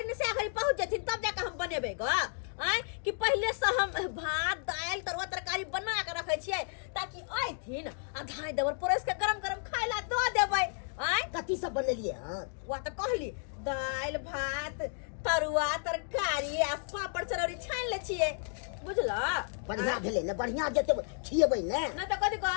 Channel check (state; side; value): silent; right; 56 dB below the other